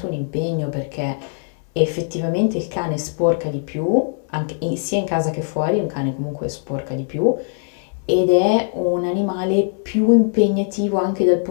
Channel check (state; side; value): silent; right; 65 dB below the other